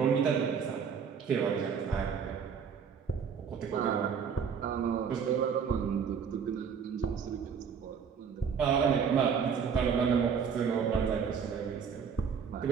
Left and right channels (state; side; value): quieter; left; 6.7 dB